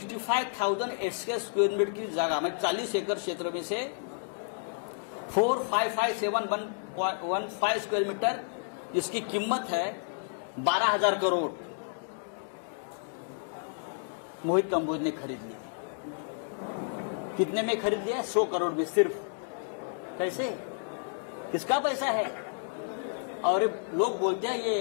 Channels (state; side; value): silent; right; digital silence